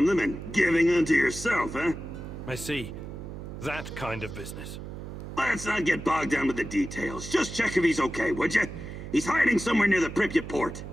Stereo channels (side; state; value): right; noise; hum, 10 dB below the sound